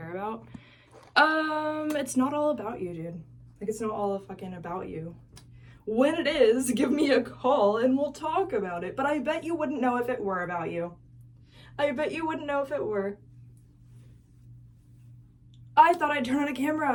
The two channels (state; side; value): identical; both; correlation 1.00